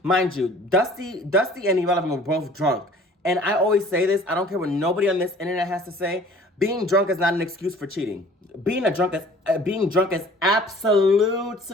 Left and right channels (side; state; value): both; normal; correlation 0.50